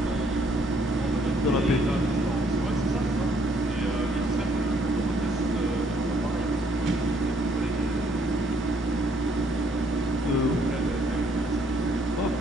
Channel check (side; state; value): both; normal; correlation 0.67